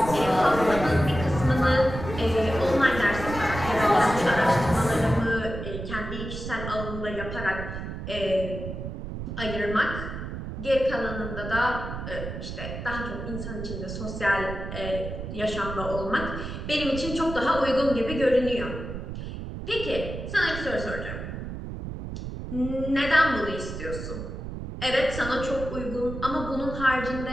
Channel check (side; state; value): right; noise; rumble, 7 dB below the sound